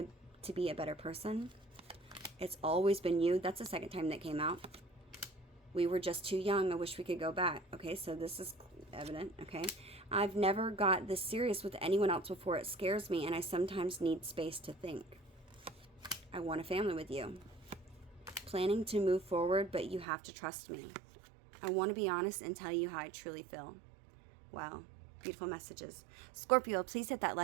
to be a better person. It's always been you. That's the second time that came out. We were just too young. I wish we could go back. Okay, so this is evident. Okay. I've never got this serious with anyone else before. It scares me, and I sometimes need space to think. I want a family with you. Planning to move forward, but you have to trust me. I want to be honest and tell you how I truly feel. Wow. Beautiful messages. Scorpio, please hit that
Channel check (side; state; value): left; drops out; at 20.1 s